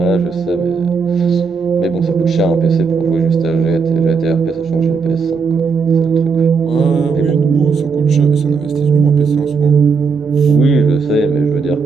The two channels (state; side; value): quieter; left; 5.1 dB